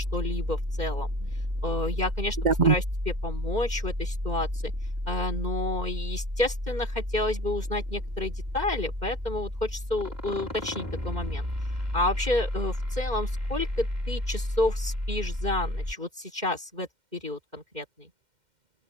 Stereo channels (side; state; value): left; late; 2.1 ms